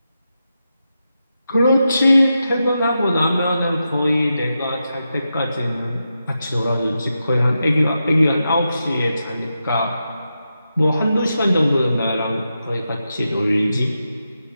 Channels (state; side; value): inverted; both; correlation -0.88